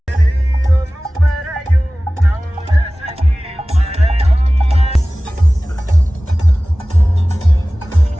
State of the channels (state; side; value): normal; both; correlation 0.98